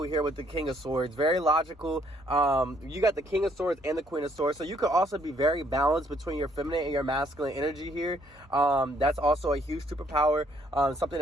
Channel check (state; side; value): normal; both; correlation 0.67